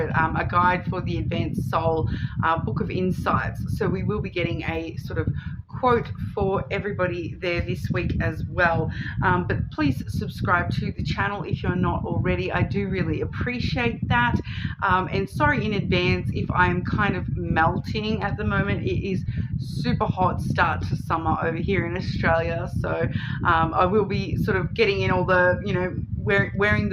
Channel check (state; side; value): identical; both; correlation 1.00